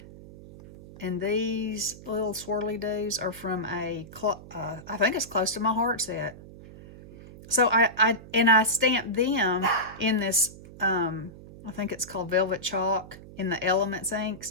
and these little swirly doos are from I think it's Close to My Heart set. So I stamped them in this, I think it's called Velvet Chalk in the Elements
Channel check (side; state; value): right; noise; hum, 17 dB below the sound